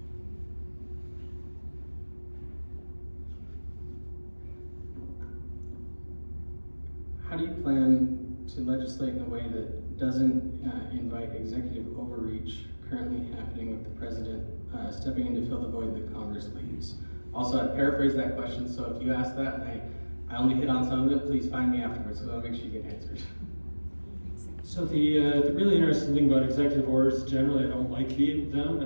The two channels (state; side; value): inverted; both; correlation -1.00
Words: How do you plan to legislate in a way that doesn't invite executive overreach currently happening with the president stepping in to fill the void that Congress leaves? Also, I paraphrase that question, so if you ask that and I only hit on some of it, please find me afterwards, so I'll make sure you get answers. So the really interesting thing about executive orders, generally I don't like